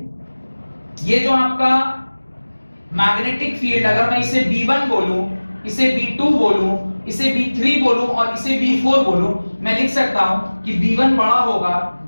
ये जो आपका मैग्नेटिक फील्ड, अगर मैं इसे B1 बोलूं, इसे B2 बोलूं, इसे B3 बोलूं और इसे B4 बोलूं, मैं लिख सकता हूं कि B1 बड़ा होगा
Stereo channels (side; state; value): both; inverted; correlation -1.00